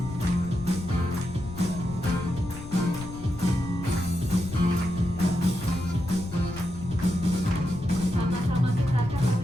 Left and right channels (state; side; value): noise; left; rumble, 12 dB below the sound